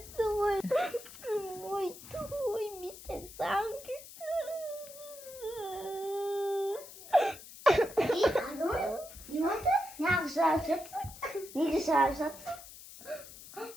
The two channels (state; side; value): noise; left; hiss, 16 dB below the sound